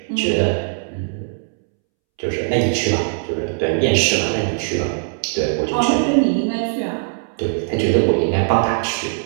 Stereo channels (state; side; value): silent; left; 66 dB below the other